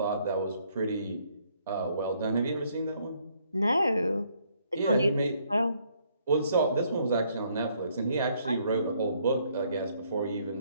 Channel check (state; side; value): inverted; both; correlation -0.69